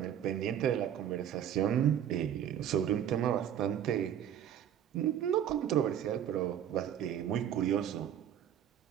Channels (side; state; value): left; quieter; 10.0 dB